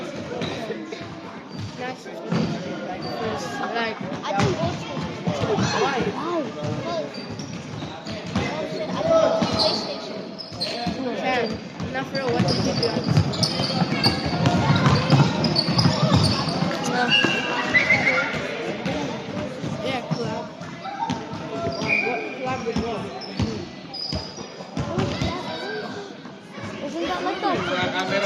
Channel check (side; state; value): both; identical; correlation 1.00